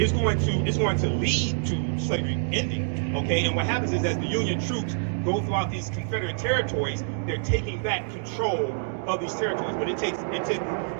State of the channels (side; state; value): left; silent; digital silence